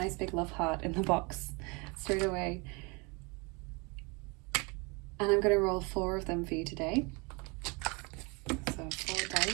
big love heart in the box straight away. And I'm going to roll 4 of them for you today. So 4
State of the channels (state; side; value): quieter; left; 29.6 dB